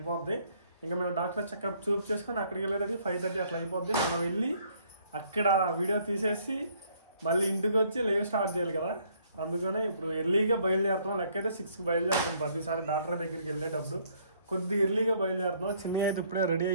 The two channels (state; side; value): inverted; both; correlation -0.64